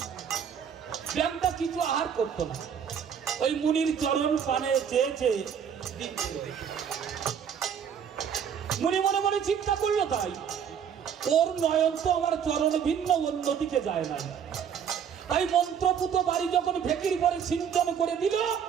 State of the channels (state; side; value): quieter; left; 7.9 dB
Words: ব্যাংটা কিছু আহার করতো না, ওই মুনির চরণ পানে চেয়ে চেয়ে মুনি মনে মনে চিন্তা করলো, তাই ওর নয়ন তো আমার চরণ ভিন্ন অন্যদিকে যায় না। তাই মন্ত্রপুত বাড়ি যখন ভেকির পরে সিঞ্চন করে দিল,